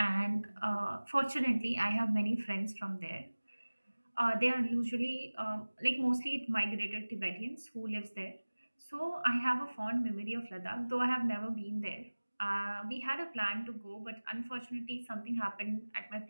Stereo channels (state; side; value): inverted; both; correlation -1.00